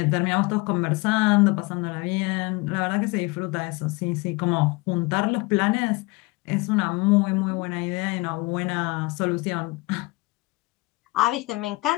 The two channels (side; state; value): right; quieter; 23.8 dB